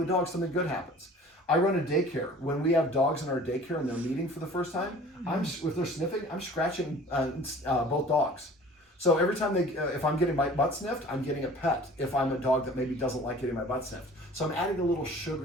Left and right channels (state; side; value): normal; both; correlation 0.46